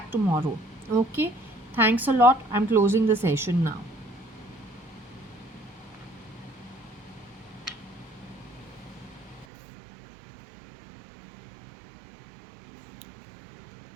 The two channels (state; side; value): drops out; left; at 9.5 s